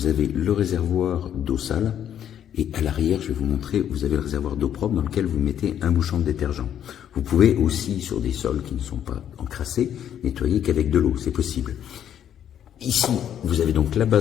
avez le réservoir d'eau sale et à l'arrière je vais vous montrer, vous avez le réservoir d'eau propre dans lequel vous mettez un bouchon de détergent. Vous pouvez aussi sur des sols qui ne sont pas encrassés nettoyer qu'avec de l'eau, c'est possible. Ici, vous avez donc la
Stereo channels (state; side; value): quieter; right; 9.8 dB